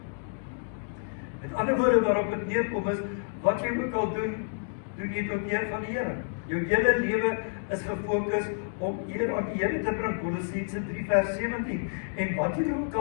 Met ander woorde waarop dit neerkom is, wat jy ook al doen, doen jy tot eer van die Here. Jou hele lewe is gefokus om eer aan die Here te bring, Kolossense 3 vers 17. En wat jy ook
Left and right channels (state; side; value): silent; right; digital silence